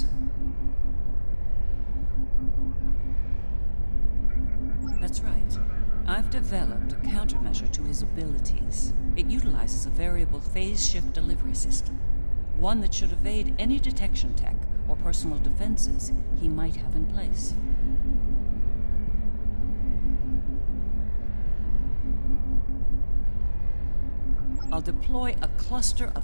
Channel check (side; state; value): both; inverted; correlation -1.00